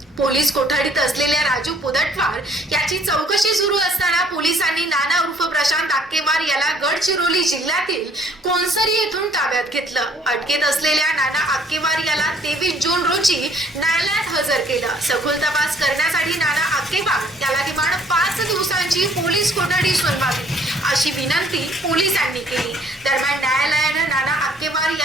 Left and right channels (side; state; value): both; normal; correlation 0.60